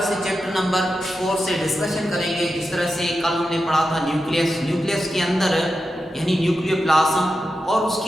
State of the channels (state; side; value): normal; both; correlation 0.90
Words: से chapter number 4 से discussion करेंगे। जिस तरह से कल हमने पढ़ा था न्यूक्लियस के अंदर यानी न्यूक्लियोप्लाज्म और